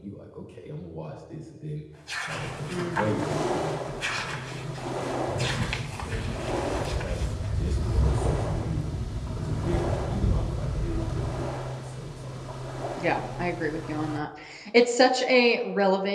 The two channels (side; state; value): both; identical; correlation 1.00